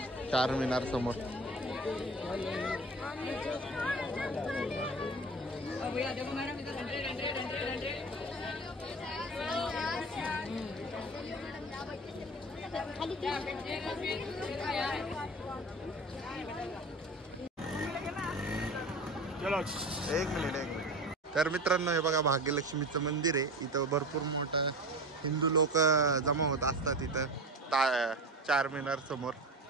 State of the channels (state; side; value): normal; both; correlation 0.32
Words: चारमिनार समोर. एक मिनिट. तर मित्रांनो हे बघा भाग्यलक्ष्मीचं मंदिर आहे. इथं भरपूर मोठं हिंदू लोक जमा होत असतात इथं चारमिनार समोर.